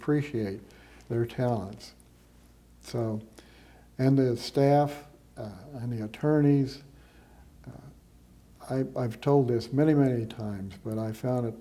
their talents. So, and the staff and the attorneys, I've told this many, many times, but I found it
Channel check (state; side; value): identical; both; correlation 1.00